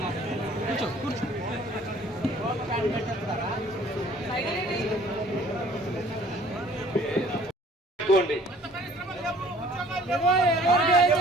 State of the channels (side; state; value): both; normal; correlation 0.54